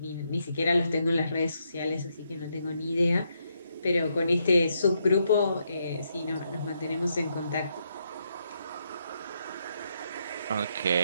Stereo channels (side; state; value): both; inverted; correlation -0.78